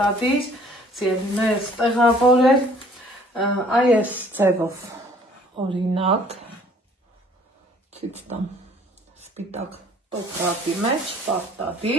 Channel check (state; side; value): normal; both; correlation 0.56